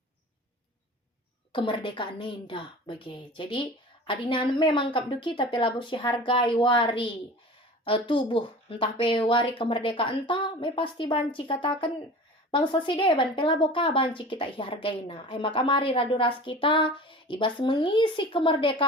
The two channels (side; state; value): both; normal; correlation 0.38